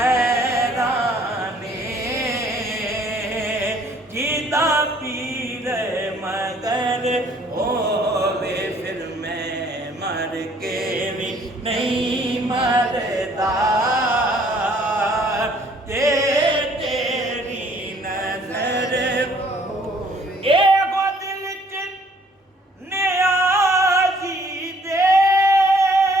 जिदा पीर मगर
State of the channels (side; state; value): both; normal; correlation 0.61